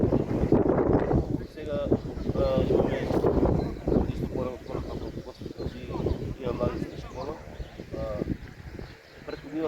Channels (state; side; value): identical; both; correlation 1.00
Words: Сега имаме исто порано подготвици, има млади за школа. Претходно